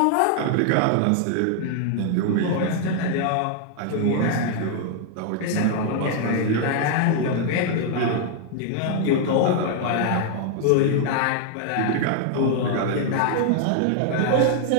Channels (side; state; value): both; different; correlation 0.00